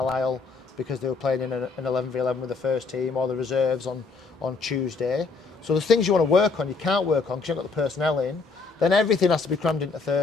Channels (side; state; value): right; quieter; 4.4 dB